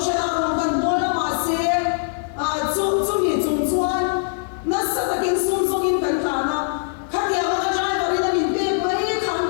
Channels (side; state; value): right; silent; 61 dB below the other